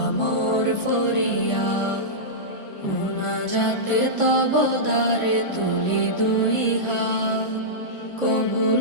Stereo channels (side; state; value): right; late; 1.5 ms